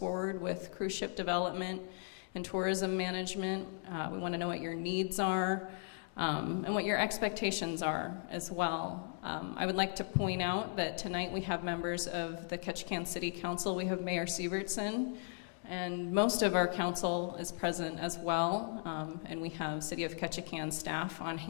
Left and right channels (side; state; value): right; silent; 53 dB below the other